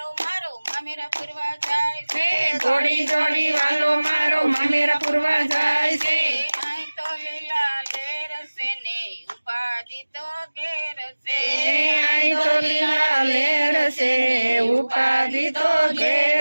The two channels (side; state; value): both; inverted; correlation -1.00